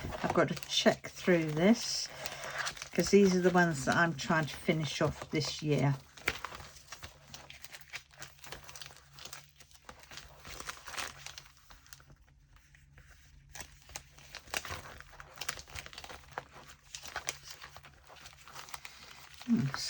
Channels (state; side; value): identical; both; correlation 1.00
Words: I've got to check through this, because these are the ones that I'm trying to finish off this year.